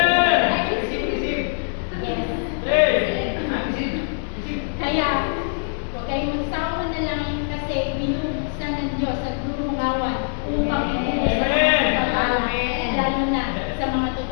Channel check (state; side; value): silent; right; 64 dB below the other